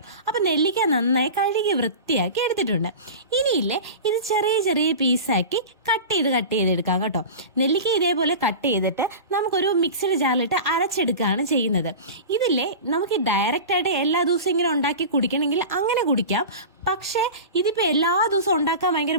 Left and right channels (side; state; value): both; inverted; correlation -0.31